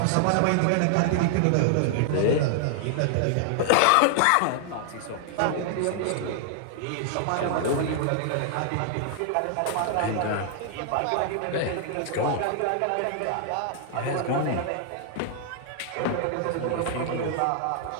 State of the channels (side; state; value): both; different; correlation -0.01